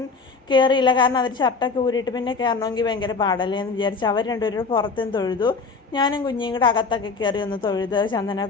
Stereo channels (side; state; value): right; quieter; 4.5 dB